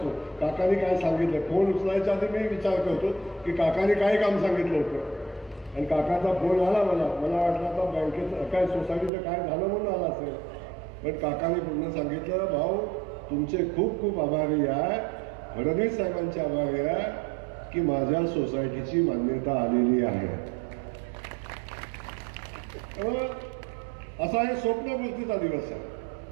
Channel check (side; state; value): left; drops out; at 9.1 s